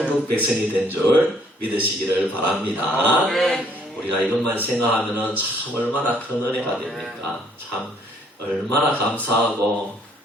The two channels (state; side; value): normal; both; correlation 0.64